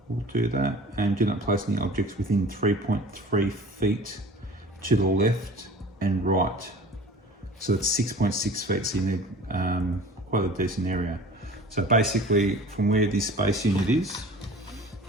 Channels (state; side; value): normal; both; correlation 0.43